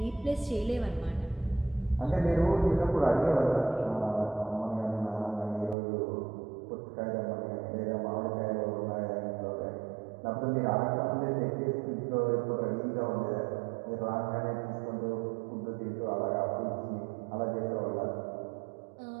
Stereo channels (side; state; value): left; drops out; at 5.8 s